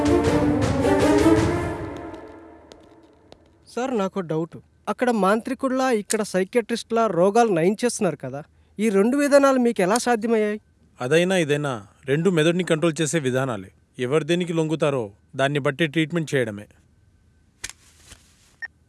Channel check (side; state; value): both; identical; correlation 1.00